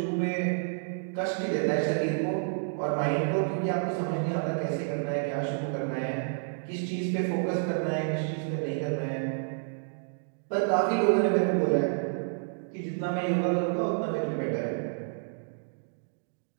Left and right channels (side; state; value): left; silent; digital silence